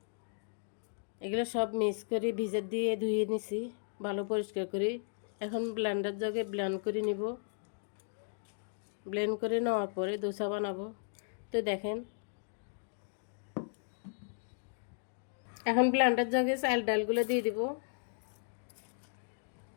এগুলো সব মিক্স করে ভিজে দিয়ে ধুয়ে নিছি ভালো পরিষ্কার করে। এখন ব্লেন্ডার জাগে ব্লেন্ড করে নিব। ব্লেন্ড করে নেওয়ার পরে দোসা বানাবো। তো দেখেন, এখন ব্লেন্ডার জাগে চাল ডালগুলো দিয়ে দিব।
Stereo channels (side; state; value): right; silent; digital silence